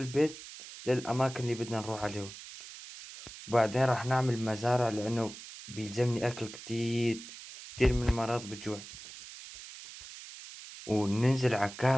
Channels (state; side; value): noise; right; hiss, 14 dB below the sound